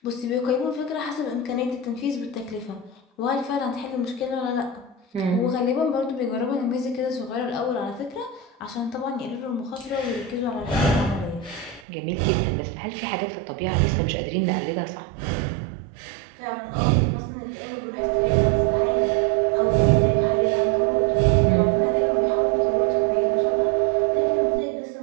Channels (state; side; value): drops out; left; at 11.9 s